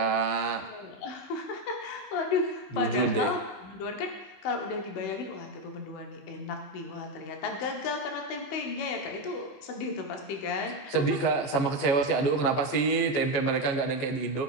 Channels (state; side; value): late; right; 15 ms